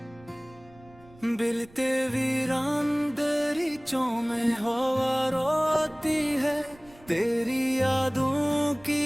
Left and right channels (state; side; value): noise; right; rumble, 25 dB below the sound